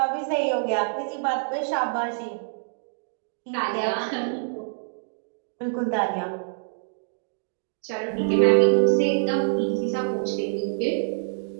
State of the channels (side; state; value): left; silent; digital silence